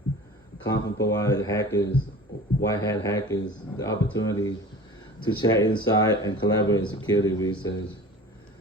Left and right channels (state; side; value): normal; both; correlation 0.41